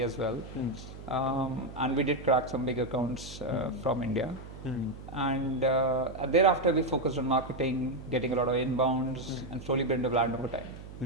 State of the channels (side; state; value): right; noise; hum, 14 dB below the sound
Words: as well. And we did crack some big accounts from India. And thereafter we focused on marketing, getting a lot of inbounds, and slowly built a brand over